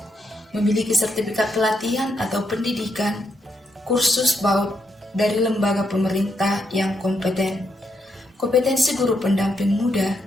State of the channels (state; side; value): normal; both; correlation 0.80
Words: memiliki sertifikat pelatihan atau pendidikan, kursus PAUD dari lembaga pemerintah yang kompeten. Kompetensi guru pendamping muda